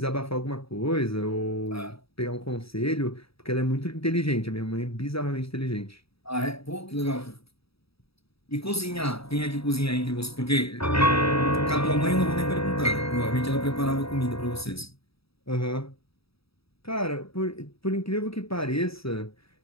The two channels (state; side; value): late; right; 0.77 ms